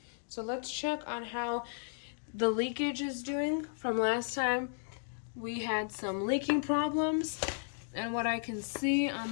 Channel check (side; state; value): right; silent; digital silence